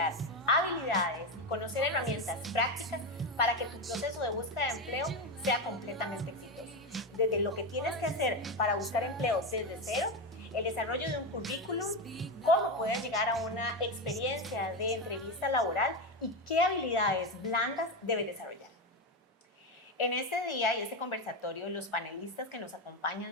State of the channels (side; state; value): both; normal; correlation 0.13